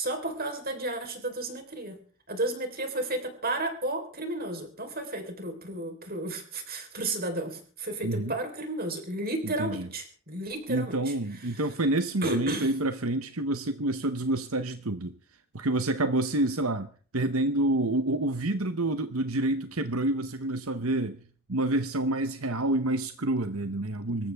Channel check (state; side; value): normal; both; correlation 0.20